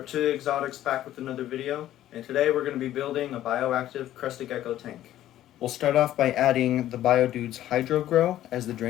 Exotics back with another video, and today we're going to be building a bioactive Crested Gecko tank. We'll start off by adding the BioDude's Hydro Grow as the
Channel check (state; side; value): quieter; right; 13.0 dB